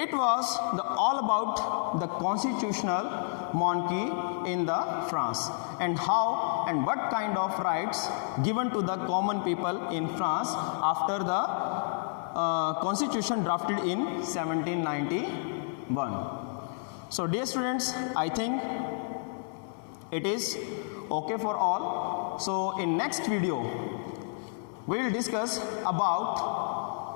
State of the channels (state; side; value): silent; right; 58 dB below the other